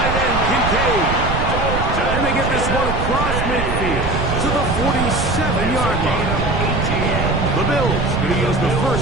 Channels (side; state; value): right; noise; rumble, 3 dB below the sound